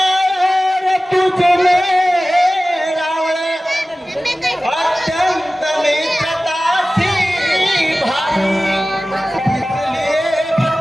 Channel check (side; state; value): both; normal; correlation 0.97